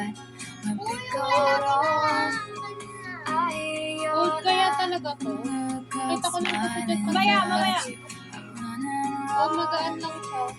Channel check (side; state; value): both; identical; correlation 1.00